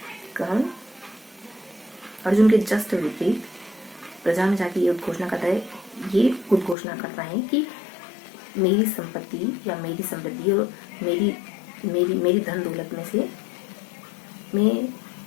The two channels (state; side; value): drops out; right; at 6.8 s